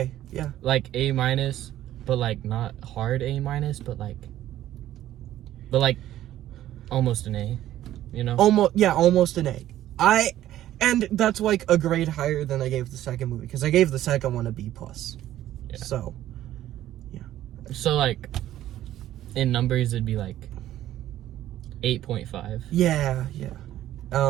Yeah. Like A minus, but like not hard A minus, but like almost an A. You know. Almost an A. And that's like a grade higher than I gave the second movie, because I gave the second one a B plus. Yeah. So. So like, in numbers it'd be like 8.5. Yeah.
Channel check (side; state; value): left; quieter; 13.1 dB